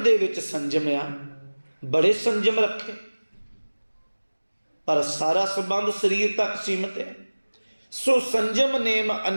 ਦੇ ਵਿੱਚ ਸੰਜਮ ਆ, ਬੜੇ ਸੰਜਮ ਰੱਖੇ, ਪਰ ਸਾਰਾ ਸੰਬੰਧ ਸਰੀਰ ਤੱਕ ਸੀਮਤ ਹੈ। ਸੋ ਸੰਜਮ ਨੇਮ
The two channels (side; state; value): both; inverted; correlation -1.00